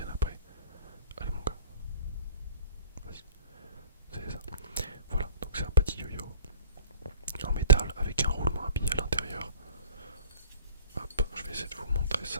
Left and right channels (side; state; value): both; inverted; correlation -0.47